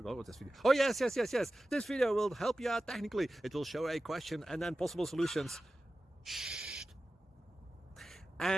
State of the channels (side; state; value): both; normal; correlation 0.94